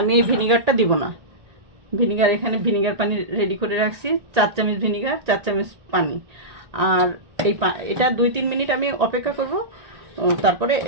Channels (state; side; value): late; left; 1.9 ms